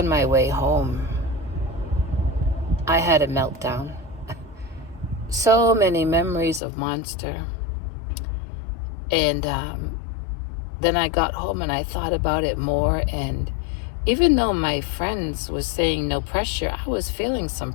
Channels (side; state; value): right; drops out; at 6.6 s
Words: my way home, I had a meltdown. So many memories of Monster. And then I got home and I thought about it more. And even though my friends was saying no pressure, I was feeling some